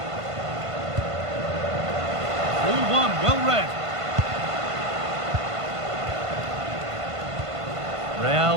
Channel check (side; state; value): left; late; 1.5 ms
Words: 4-1, well read.